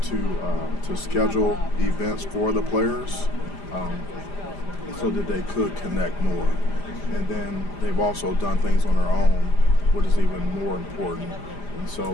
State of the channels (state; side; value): late; right; 5.0 ms